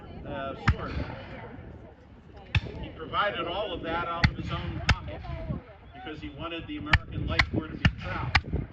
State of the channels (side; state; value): both; identical; correlation 1.00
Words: sword. He provided all of that out of his own pocket because he wanted the American Light Corps to be proud.